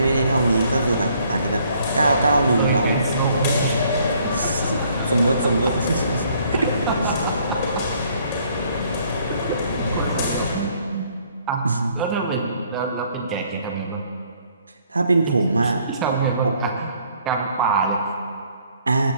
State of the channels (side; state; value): both; inverted; correlation -0.64